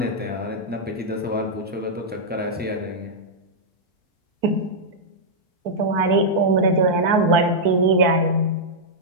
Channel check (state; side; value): normal; both; correlation -0.08